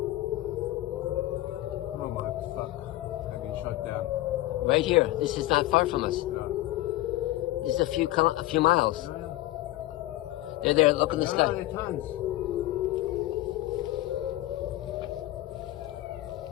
Oh my fuck. I've been shot down. Right here. This is not far from us. No. This is a few miles. No. They're there. Look in the No, sky. they're tons.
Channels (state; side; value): quieter; right; 16.7 dB